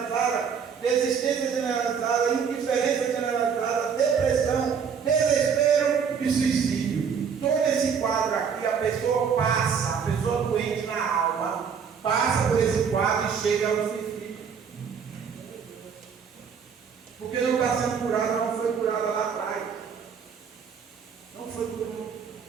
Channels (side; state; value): left; quieter; 6.7 dB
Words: indiferença generalizada, depressão, desespero e suicídio. Todo esse quadro aqui, a pessoa passa, a pessoa doente na alma, passa por esse quadro e chega ao suicídio. Porque não está sendo curada, não foi curada lá atrás. Não foi curada.